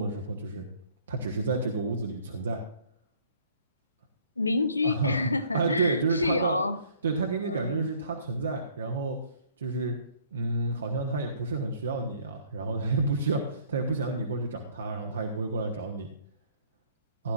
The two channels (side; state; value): both; inverted; correlation -0.59